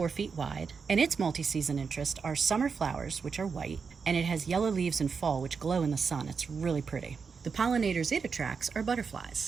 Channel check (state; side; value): quieter; left; 5.6 dB